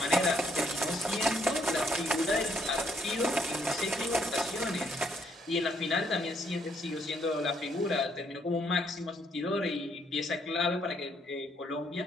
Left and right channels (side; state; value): both; normal; correlation 0.71